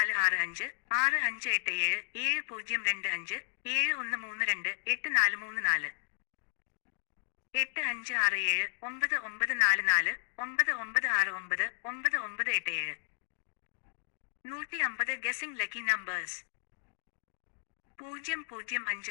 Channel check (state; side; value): silent; right; digital silence